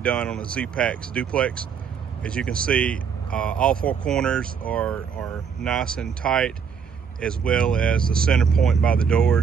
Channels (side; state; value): left; quieter; 6.7 dB